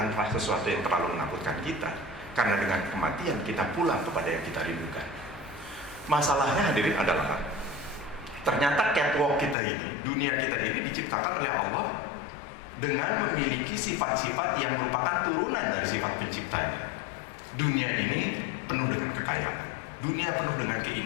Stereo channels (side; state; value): right; drops out; at 9.6 s